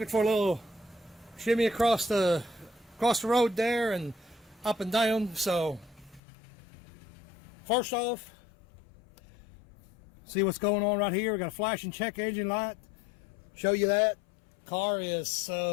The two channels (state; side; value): drops out; right; at 6.2 s